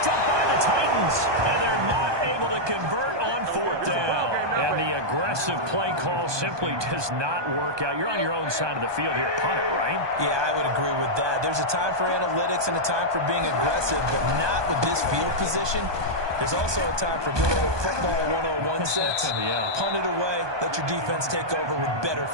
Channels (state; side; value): late; left; 1.2 ms